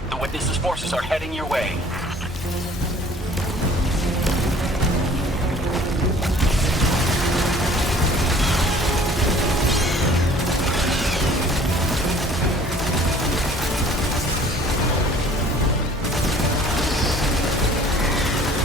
The Witness's forces are heading your way.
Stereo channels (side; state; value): both; normal; correlation 0.52